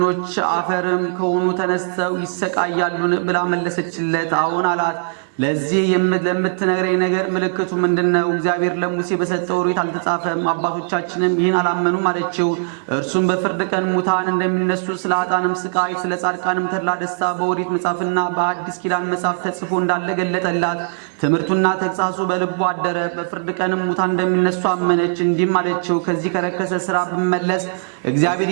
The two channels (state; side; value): silent; left; digital silence